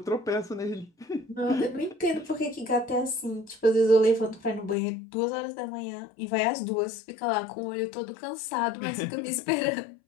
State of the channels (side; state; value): right; drops out; at 4.8 s